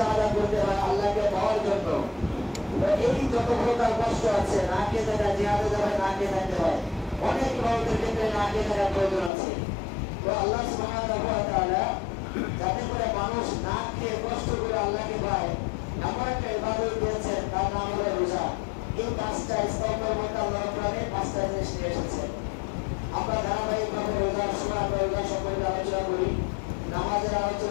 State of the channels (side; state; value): right; drops out; at 9.3 s